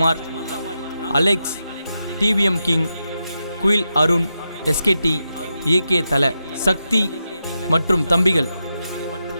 Alex, TVM king, Kuyil Arun, SKD, AK Thala, Sakthi மற்றும் தம்பிகள்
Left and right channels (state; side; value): inverted; both; correlation -0.87